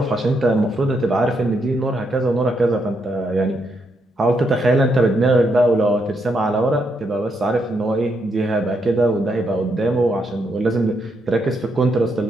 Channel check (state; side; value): normal; both; correlation 0.78